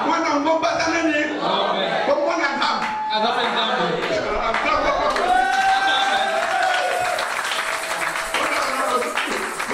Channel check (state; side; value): identical; both; correlation 1.00